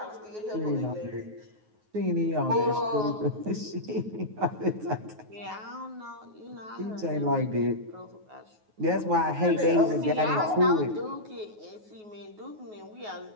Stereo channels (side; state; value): left; late; 9.4 ms